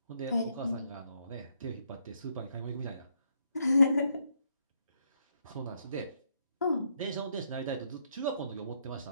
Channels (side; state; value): both; inverted; correlation -0.75